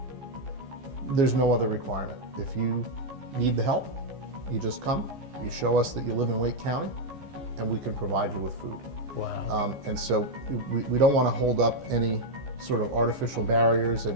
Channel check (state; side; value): late; left; 15 ms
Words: There's no other requirement. If you need the help, you just come, you show us that you live in Wake County, and we can provide you with food. Wow. And so we don't want to hold up any sort of artificial barriers,